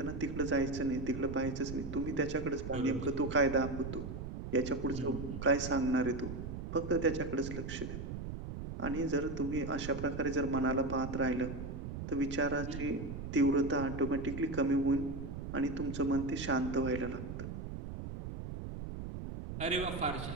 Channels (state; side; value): noise; right; rumble, 7 dB below the sound